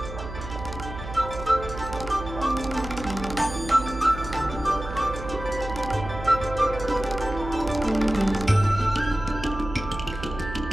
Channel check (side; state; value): right; noise; hum, 10 dB below the sound